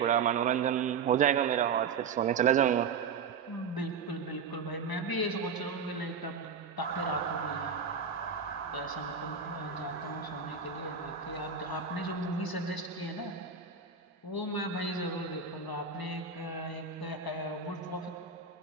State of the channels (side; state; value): left; quieter; 5.9 dB